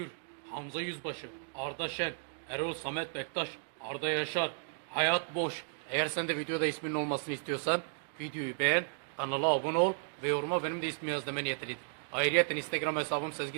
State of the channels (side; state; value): left; silent; digital silence